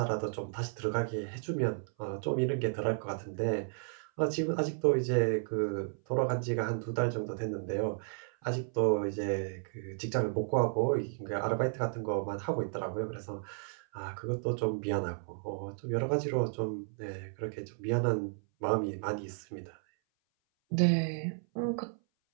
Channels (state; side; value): silent; left; 56 dB below the other